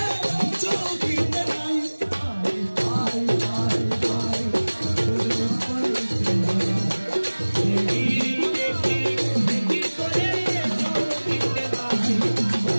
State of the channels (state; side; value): inverted; both; correlation -1.00